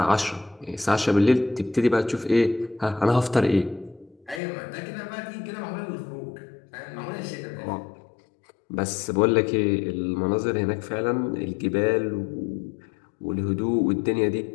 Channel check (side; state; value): right; drops out; at 4.4 s